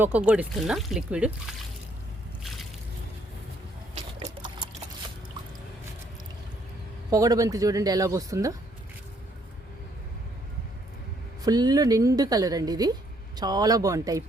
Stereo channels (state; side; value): normal; both; correlation 0.68